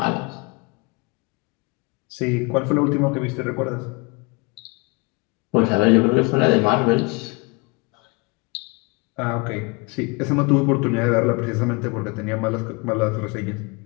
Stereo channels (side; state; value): right; quieter; 27.7 dB